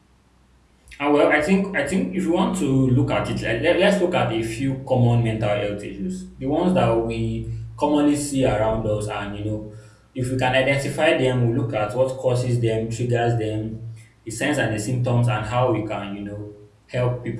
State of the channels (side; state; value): both; identical; correlation 1.00